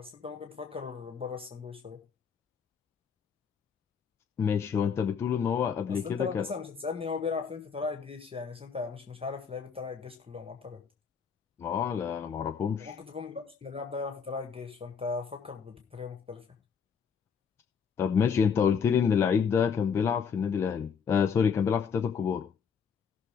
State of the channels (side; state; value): right; quieter; 6.6 dB